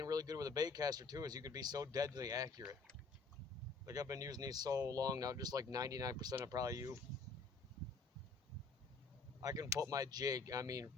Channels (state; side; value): quieter; right; 4.3 dB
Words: really good with a bait caster too, is you could be so deadly accurate. Like I've been using these so long now, just like 99% of probably you. I can put my jig, I mean,